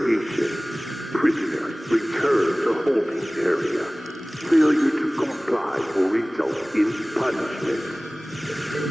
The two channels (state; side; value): normal; both; correlation 0.98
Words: Prisoners return to holding area. Failure to comply will result in punishment.